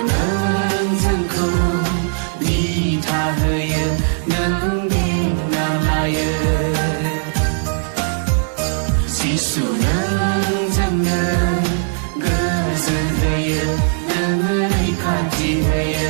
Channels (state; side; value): silent; left; digital silence